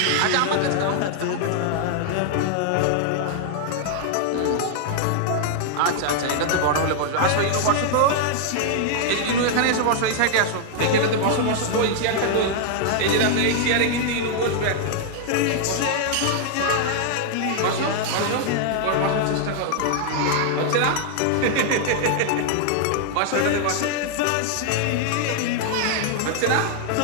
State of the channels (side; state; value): both; different; correlation -0.01